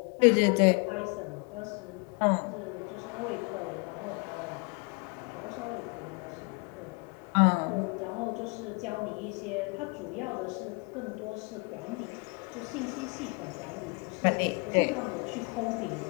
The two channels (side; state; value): right; quieter; 33.1 dB